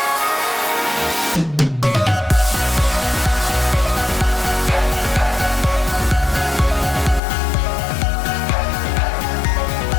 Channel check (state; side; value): drops out; right; at 7.2 s